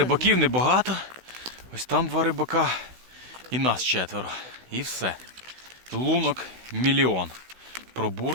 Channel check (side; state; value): left; late; 16 ms